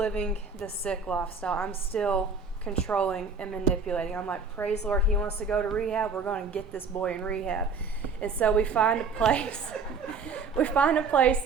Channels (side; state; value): left; quieter; 4.8 dB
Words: the sick lifestyle. I'm still controlling and manipulating. I'm like, praise the Lord, he wants to go to rehab. We're going to get this boy in rehab. And so we find a place. We find a place